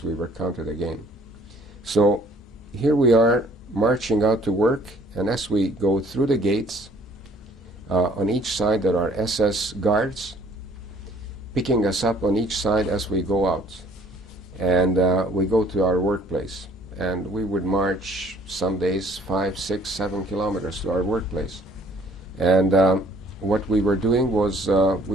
we were counted again. So here we are marching out to work, and as we go through the gates, on each side there are SS guards picking us up on each side as we go out. And we go to our workplace. And we would march some days 5, 6, 7 kilometers to our workplace. And what we were doing was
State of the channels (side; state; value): both; normal; correlation 0.59